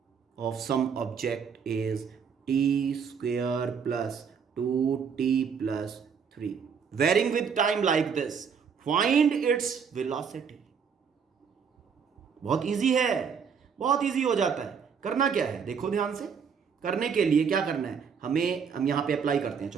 of some object is T square plus 2t plus 3, varying with time like this. Find its velocity. बहुत इजी है, बहुत इजी हो जाता है. करना क्या है, देखो ध्यान से. करने के लिए क्या करना है, हम यहां पे अप्लाई करते हैं.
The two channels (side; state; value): left; quieter; 6.6 dB